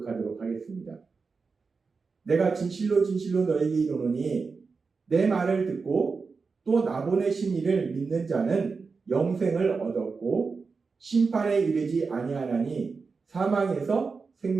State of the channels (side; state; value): left; quieter; 4.7 dB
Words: 하겠습니다. 내가 진실로 진실로 너에게 이르노니 내 말을 듣고 또 나 보내신 이를 믿는 자는 영생을 얻었고 심판에 이르지 아니하나니 사망에서